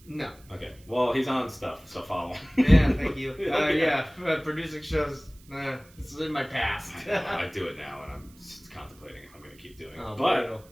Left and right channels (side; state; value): right; noise; hiss, 27 dB below the sound